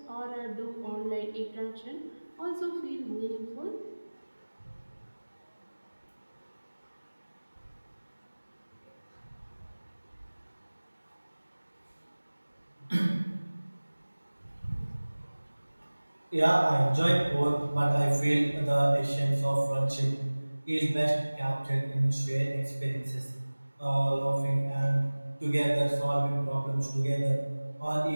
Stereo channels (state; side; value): inverted; both; correlation -1.00